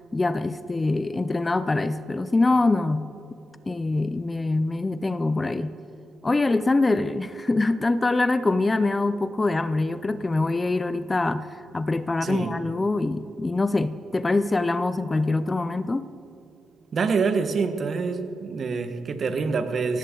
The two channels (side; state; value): both; normal; correlation 0.93